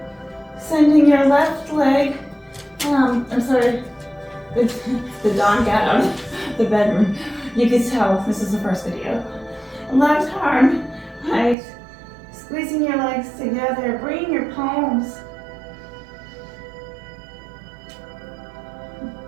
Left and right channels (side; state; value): left; drops out; at 11.6 s